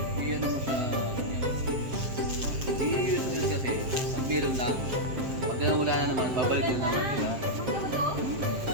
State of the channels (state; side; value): late; left; 7.5 ms